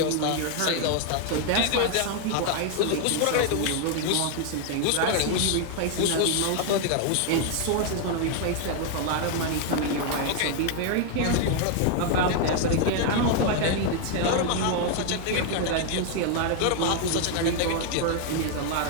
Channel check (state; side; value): different; both; correlation 0.00